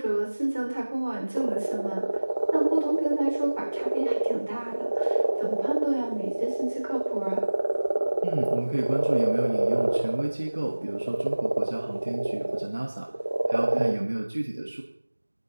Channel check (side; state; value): both; inverted; correlation -1.00